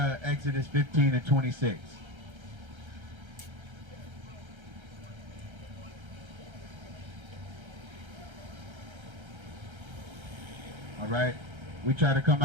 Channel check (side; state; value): left; late; 1.3 ms